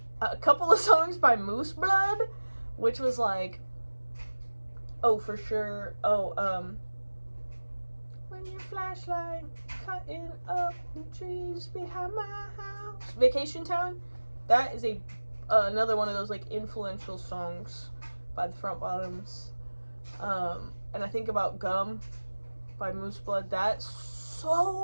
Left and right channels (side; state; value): both; inverted; correlation -1.00